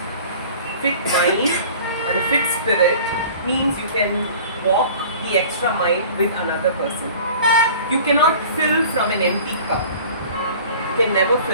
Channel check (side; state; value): both; inverted; correlation -0.44